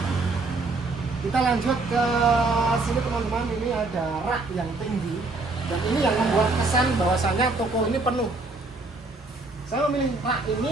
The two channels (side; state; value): left; quieter; 3.4 dB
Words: Kita lanjut ke sini teman-teman, ini ada rak yang tinggi. Dan ini yang membuat kesan bahwasanya toko ini penuh. Saya memilih rak